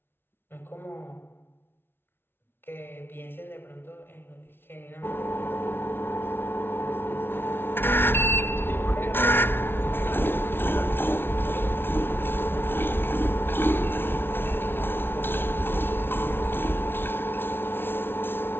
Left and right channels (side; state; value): right; late; 0.11 ms